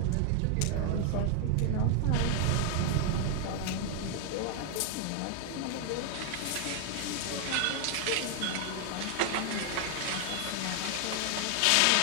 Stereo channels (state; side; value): different; both; correlation 0.00